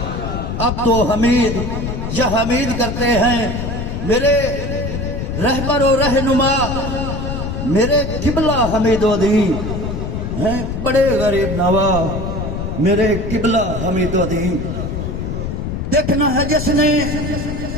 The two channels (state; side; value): noise; left; rumble, 4 dB below the sound